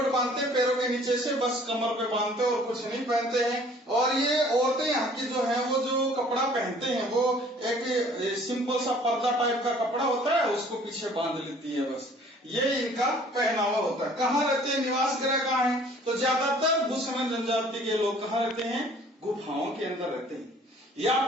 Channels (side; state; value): both; normal; correlation 0.54